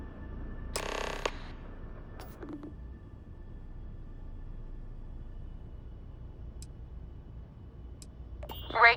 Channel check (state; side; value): identical; both; correlation 1.00